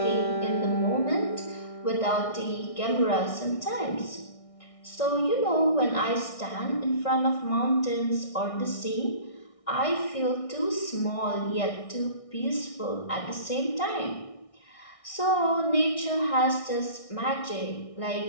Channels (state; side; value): late; right; 1.6 ms